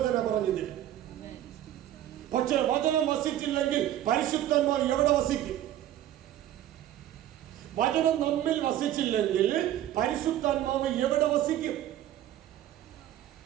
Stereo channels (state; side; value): quieter; left; 12.4 dB